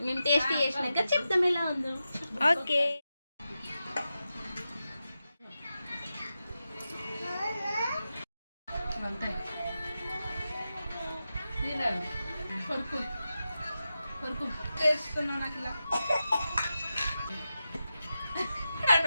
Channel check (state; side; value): inverted; both; correlation -0.90